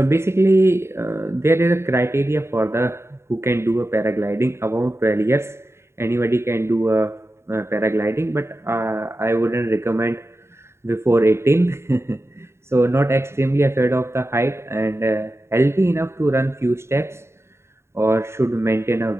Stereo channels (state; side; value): late; left; 0.13 ms